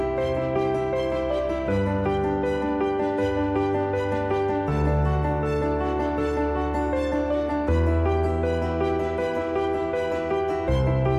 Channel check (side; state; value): both; identical; correlation 1.00